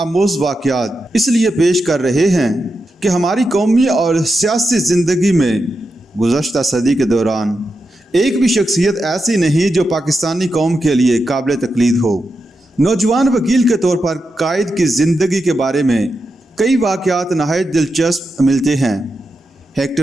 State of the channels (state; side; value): normal; both; correlation 0.87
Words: वाक़यात इसलिए पेश कर रहे हैं कि हमारी कौमी और सियासी ज़िंदगी में गुज़श्ता सदी के दौरान एक भी शख्सियत ऐसी नहीं जो पाकिस्तानी कौम के लिए काबिल तक़लीद हो। नौजवान वकील के तौर पर कायद की ज़िंदगी के बारे में कई वाक़यात नहायत दिलचस्प मिलते हैं।